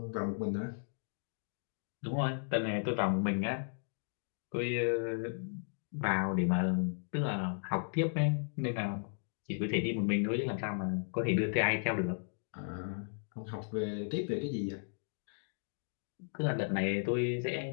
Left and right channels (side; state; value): right; silent; digital silence